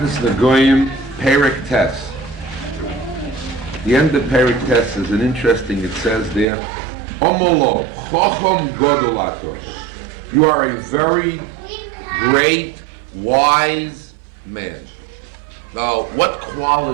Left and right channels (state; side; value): drops out; left; at 6.5 s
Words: Negoyim, Perek Tes. The end of Perek Tes is an interesting. It says there, Omolo Chochom Godolator. You are a very great, wise man. Now, what